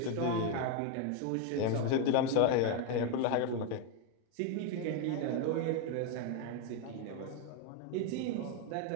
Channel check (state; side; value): different; both; correlation 0.01